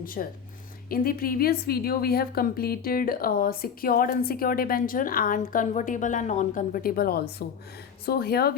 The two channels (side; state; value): right; quieter; 7.2 dB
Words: In the previous video, we have completed secured unsecured debenture and convertible and non-convertible also. So here